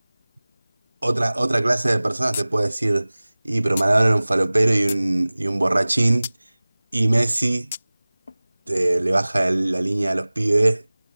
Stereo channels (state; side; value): inverted; both; correlation -0.99